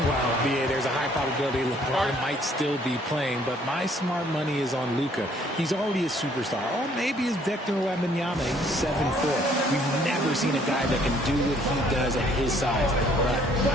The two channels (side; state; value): both; normal; correlation 0.62